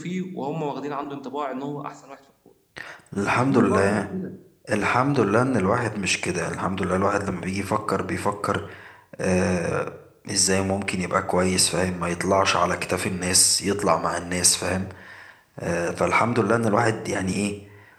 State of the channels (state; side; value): identical; both; correlation 1.00